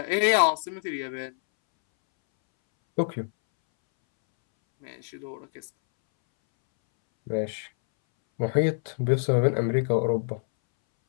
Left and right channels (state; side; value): silent; right; 61 dB below the other